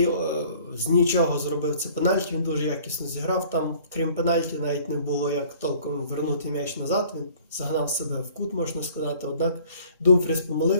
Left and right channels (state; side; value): inverted; both; correlation -0.53